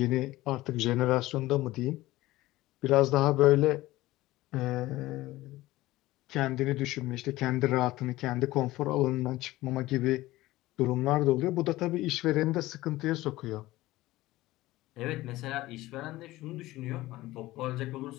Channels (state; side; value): quieter; right; 17.7 dB